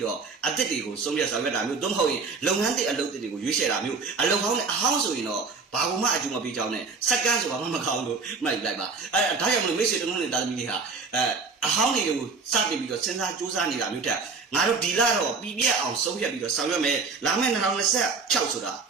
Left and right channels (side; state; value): left; quieter; 4.6 dB